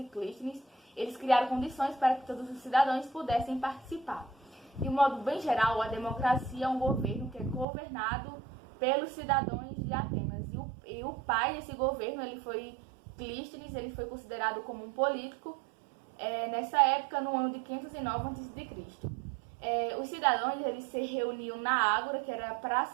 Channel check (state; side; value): drops out; left; at 7.7 s